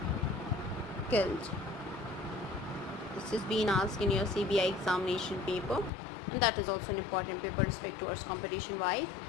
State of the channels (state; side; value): drops out; right; at 5.9 s